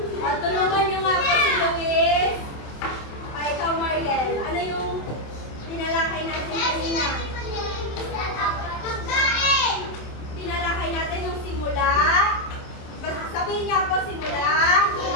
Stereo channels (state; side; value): late; right; 27 ms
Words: O, tulungan niyo nga po si Luis. O, ikaw, Mariel. Ano yung tinalakay natin kanina? Tinalakay natin yung simula. Basta sabihin niya po simula.